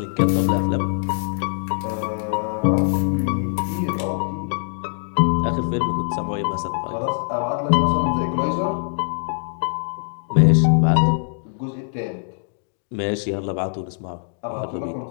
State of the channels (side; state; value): right; silent; digital silence